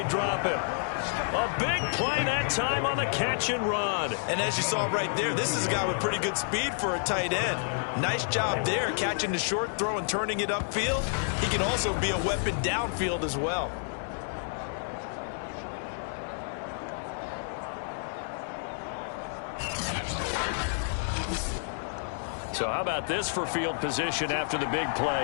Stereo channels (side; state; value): right; silent; digital silence